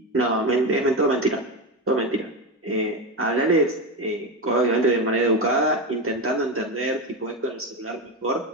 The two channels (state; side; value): normal; both; correlation 0.16